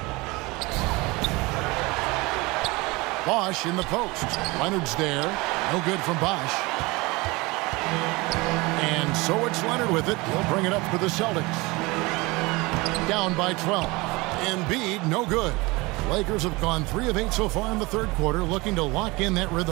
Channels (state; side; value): quieter; left; 23.7 dB